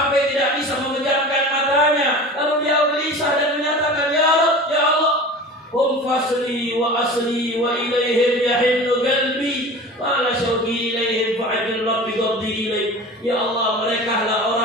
tidak bisa memejamkan matanya. Lalu dia gelisah dan menyatakan, ya Allah, hum fasli wa asli wa ilaihim yahinnu qalbi wa la syauqi ilaihim fa'adil rabbi qabdi ilaih. Ya Allah, mereka lah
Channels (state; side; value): normal; both; correlation 0.36